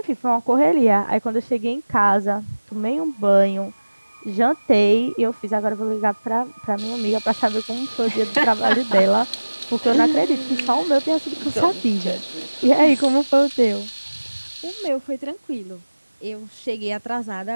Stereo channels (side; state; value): both; inverted; correlation -1.00